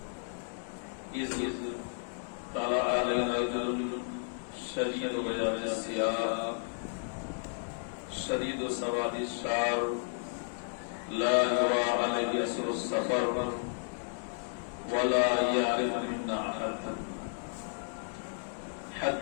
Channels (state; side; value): silent; right; digital silence